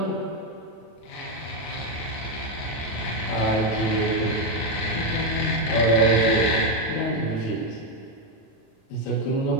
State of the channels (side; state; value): right; late; 37 ms